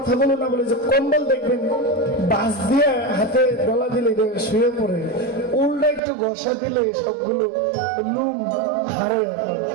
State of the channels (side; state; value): left; drops out; at 6.0 s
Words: না বলে যে কম্বল দেখবেন বাস দিয়ে হাতে গলা দিলে শুয়ে পড়ে, উল্টা একটু ঘষা দিলে সবগুলো লুম হারে।